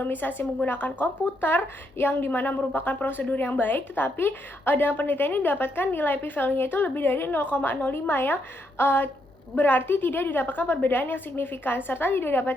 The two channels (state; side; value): normal; both; correlation 0.77